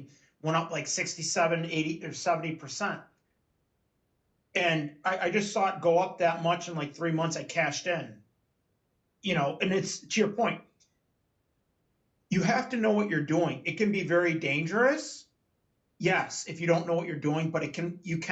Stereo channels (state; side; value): identical; both; correlation 1.00